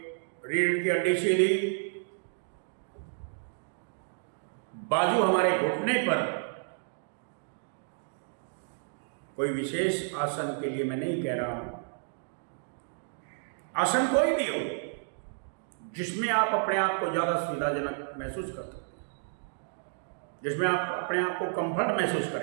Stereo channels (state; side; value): silent; left; digital silence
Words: रीढ़ की हड्डी सीधी, बाजू हमारे घुटने पर। कोई विशेष आसन के लिए मैं नहीं कह रहा हूं, आसन कोई भी हो जिसमें आप अपने आप को ज्यादा सुविधाजनक महसूस कर सकते हैं, जिसमें आप अपने आप को कंफर्ट महसूस